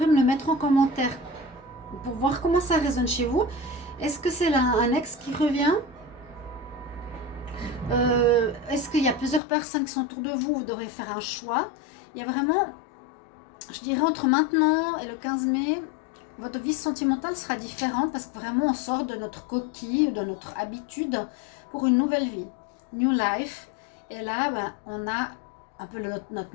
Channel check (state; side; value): drops out; right; at 9.4 s